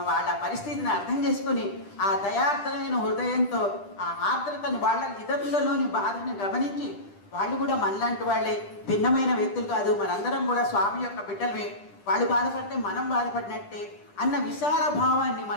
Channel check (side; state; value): right; late; 10 ms